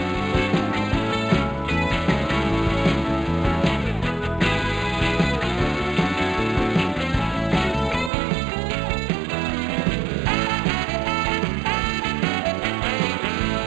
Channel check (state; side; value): drops out; left; at 8.1 s